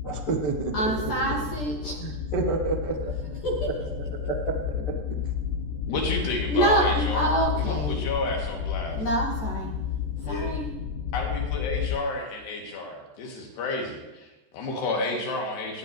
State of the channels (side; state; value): right; late; 14 ms